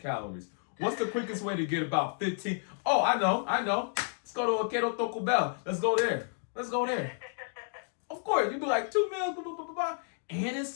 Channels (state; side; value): silent; right; 57 dB below the other